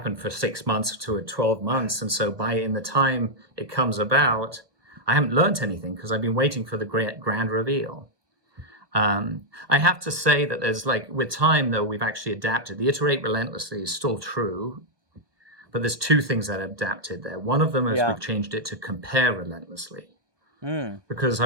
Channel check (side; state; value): left; late; 1.2 ms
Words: for 6 months to 12 months. And so in the time it comes about, I haven't learned anything because I've been waiting for the grand reveal. I have to say that there's with time, though, we've actually adapted. The iterate relentlessly is still true, but there's 2 things that are adapted there. One of them is we've changed it to compare relentlessly. Because